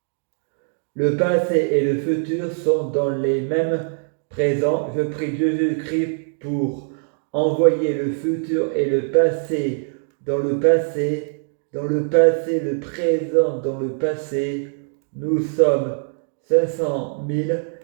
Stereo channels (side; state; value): left; silent; digital silence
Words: le passé et le futur sont dans les mêmes présents. Je prie Jésus-Christ pour envoyer le futur et le passé dans le passé, le présent dans le passé. Nous sommes 500 000,